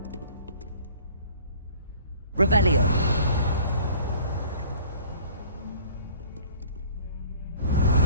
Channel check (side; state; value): both; inverted; correlation -0.51